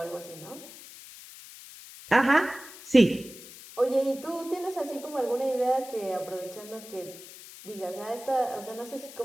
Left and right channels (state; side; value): noise; left; hiss, 16 dB below the sound